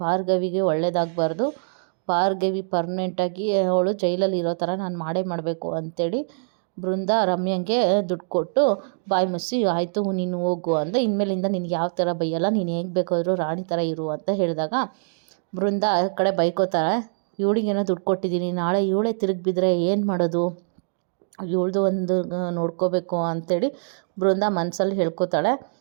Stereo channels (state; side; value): silent; left; digital silence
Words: ಭಾರ್ಗವಿಗೆ ಒಳ್ಳೇದಾಗಬಾರ್ದು, ಭಾರ್ಗವಿ ಪರ್ಮನೆಂಟಾಗಿ ಅವಳು ಜೈಲಲ್ಲಿ ಇರೋ ಥರ ನಾನು ಮಾಡಬೇಕು ಅಂತೇಳಿ ಬೃಂದ ರಮ್ಯಂಗೆ ದುಡ್ಡು ಕೊಟ್ಟು ಬಾಯಿ ಮುಚ್ಚಿ, ಆಯಿತು ನೀನು ಹೋಗು ಅಂದರೆ, ಇನ್ಮೇಲಿಂದ ನಿನಗೆ ಯಾವ ಥರ ಬೈಯಲ್ಲ, ನೀನು ಹೇಗೆ ಬೇಕಾದರೂ ರಾಣಿ ಥರ ಇರು ಅಂತ ಹೇಳಿದಾಗ ಬೃಂದ ಆ ಕಡೆ ಬೈಕೋತಾಳೆ. ಇವಳಿಗೇನೋ ದುಡ್ಡು ಕೊಟ್ಟಿದ್ದೀನಿ, ನಾಳೆ ಇವಳೇ ತಿರುಗಿ ಬಿದ್ದರೆ ಏನು ಮಾಡೋದು, ಇವಳ್ದು ಒಂದು ನೋಡ್ಕೋಬೇಕು ಅಂತೇಳಿ ಬೃಂದ ಮನಸ್ಸಲ್ಲಿ ಹೇಳ್ಕೊತಾಳೆ.